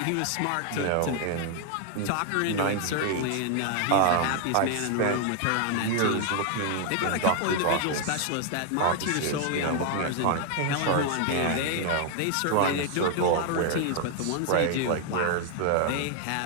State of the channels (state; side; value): different; both; correlation 0.00